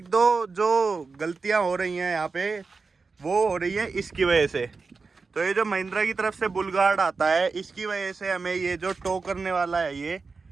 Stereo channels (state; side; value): quieter; left; 4.4 dB